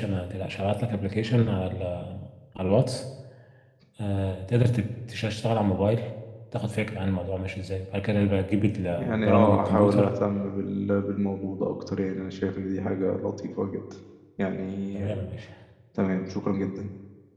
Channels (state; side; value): identical; both; correlation 1.00